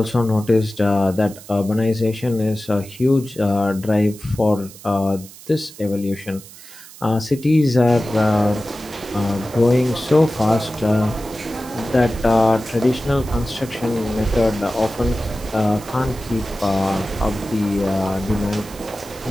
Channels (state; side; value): noise; right; hiss, 18 dB below the sound